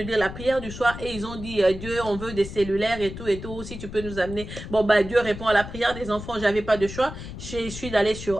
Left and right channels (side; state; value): left; noise; rumble, 11 dB below the sound